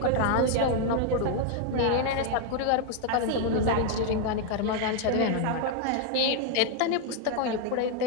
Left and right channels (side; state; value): both; different; correlation 0.00